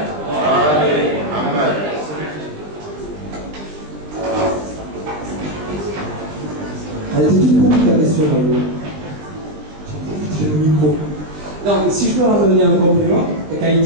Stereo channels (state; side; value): late; left; 20 ms